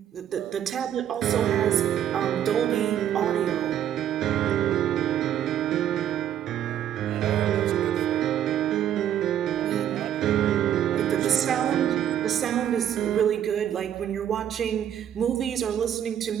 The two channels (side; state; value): left; quieter; 10.4 dB